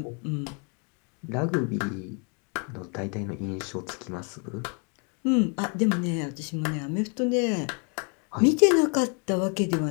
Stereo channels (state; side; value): quieter; right; 36.0 dB